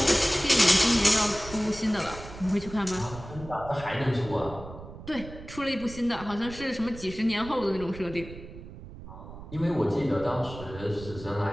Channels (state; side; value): noise; right; rumble, 14 dB below the sound